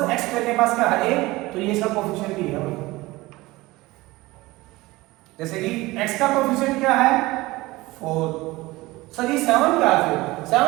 x स्क्वायर के पास क्या है a, तो ये इसका कोफिशिएंट ही है। जैसे कि x का कोफिशिएंट क्या है 4, सर ये 7 क्या है, फिर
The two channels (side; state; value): left; quieter; 20.2 dB